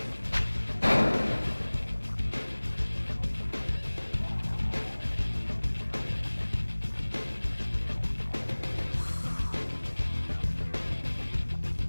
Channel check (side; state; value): both; inverted; correlation -1.00